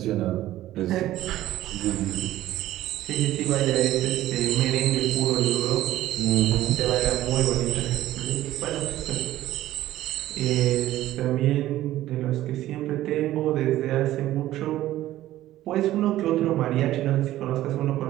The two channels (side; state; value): left; quieter; 14.5 dB